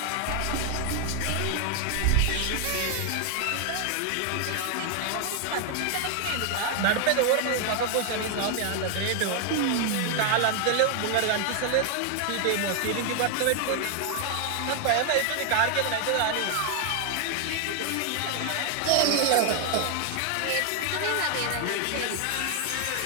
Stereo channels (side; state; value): both; different; correlation 0.00